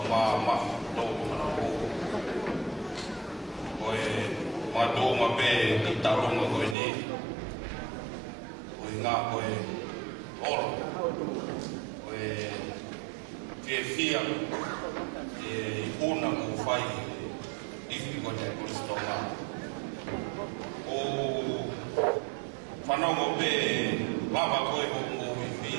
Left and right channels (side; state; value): left; drops out; at 6.8 s